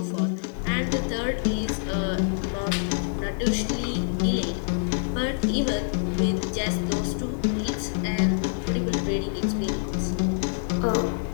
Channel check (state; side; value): silent; right; digital silence